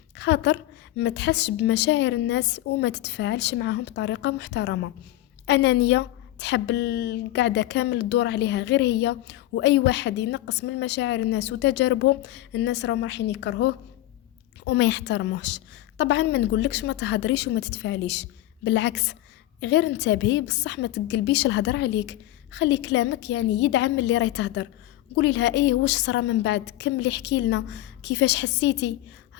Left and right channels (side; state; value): right; quieter; 15.4 dB